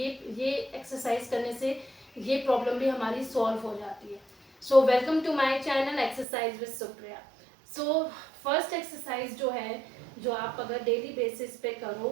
ये एक्सरसाइज करने से ये प्रॉब्लम भी हमारी सॉल्व हो जाती है। So welcome to my channel exercise with Supriya. So first exercise जो है, जो आप अगर डेली बेसिस पे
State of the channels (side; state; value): left; drops out; at 6.2 s